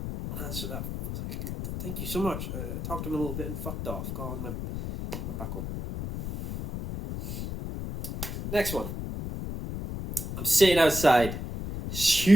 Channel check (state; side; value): noise; left; rumble, 6 dB below the sound